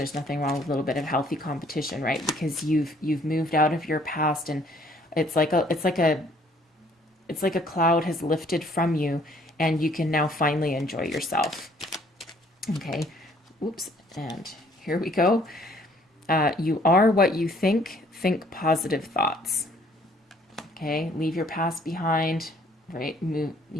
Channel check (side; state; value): both; normal; correlation 0.61